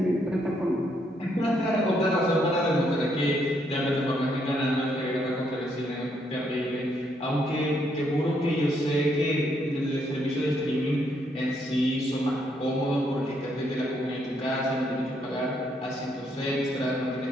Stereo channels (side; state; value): both; normal; correlation 0.73